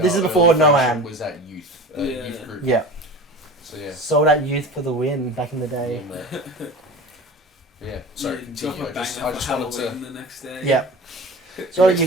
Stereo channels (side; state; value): both; normal; correlation 0.36